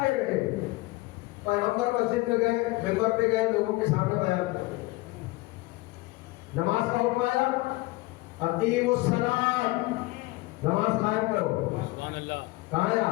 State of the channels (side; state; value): right; quieter; 21.8 dB